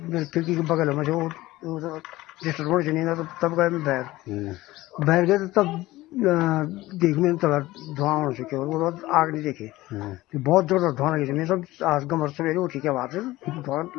मेरे खिड़की के बगल में जो रोड से नहीं था, तब गए मैं बाहर गए तो तब देख में तब धुआं होने से केवल वो आग नहीं देखे। बहुत जोर धुआं लगी मैं सब आज गमर सवेरे उठी के बाद धुआं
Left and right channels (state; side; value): quieter; right; 17.9 dB